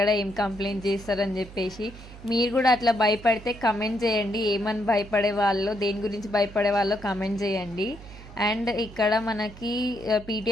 ఏం కంప్లైంట్ చేస్తారని చెప్పేసి. మీరు కూడా అట్లా భయపడితే కమెంట్ చేయండి, ఏమని భయపడే వాళ్ళు, దేని గురించి భయపడే వాళ్ళో కమెంట్ చేయండి. అండ్ ఇక్కడ మనకి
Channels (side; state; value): right; noise; hum, 17 dB below the sound